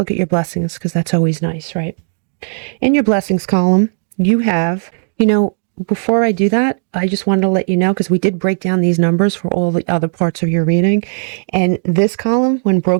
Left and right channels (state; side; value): silent; left; digital silence